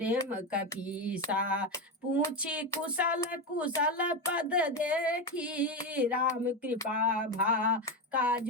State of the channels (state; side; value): normal; both; correlation 0.14